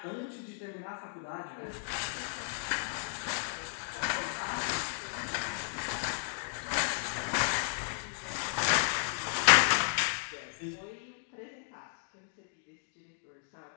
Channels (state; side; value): silent; right; digital silence